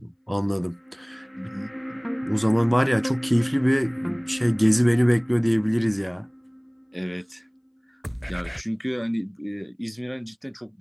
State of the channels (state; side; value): identical; both; correlation 1.00